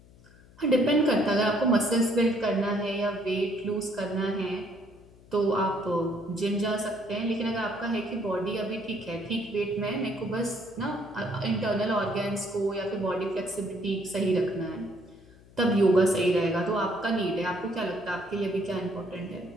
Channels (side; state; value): left; noise; hum, 24 dB below the sound